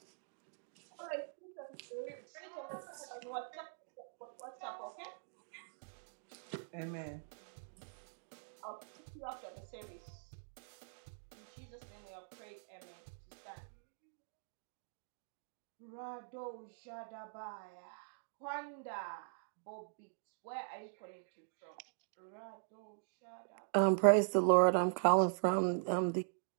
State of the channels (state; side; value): silent; left; digital silence